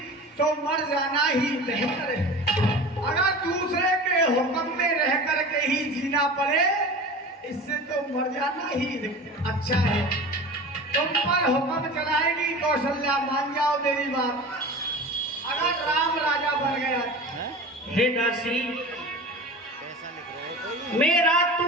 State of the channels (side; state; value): both; normal; correlation 0.35